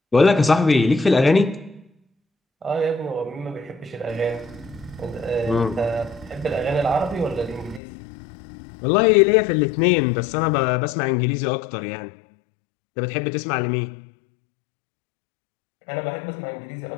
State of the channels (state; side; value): drops out; right; at 7.8 s